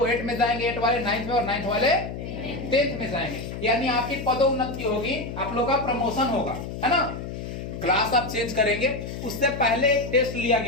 8 में जाएंगे, 8 वाले 9th में, और 9th वाले 10th में जाएंगे। यानी आपकी पदोन्नति होगी, आप लोगों का प्रमोशन होगा, है ना। क्लास आप चेंज करेंगे। उससे पहले एक टेस्ट लिया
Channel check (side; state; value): left; noise; hum, 8 dB below the sound